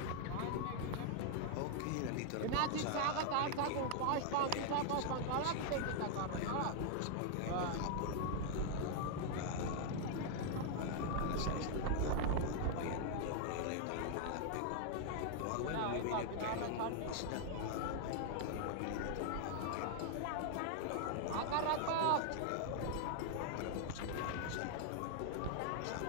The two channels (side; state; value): both; different; correlation 0.00